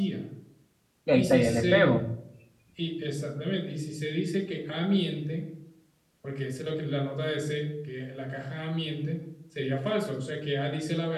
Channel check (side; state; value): both; identical; correlation 1.00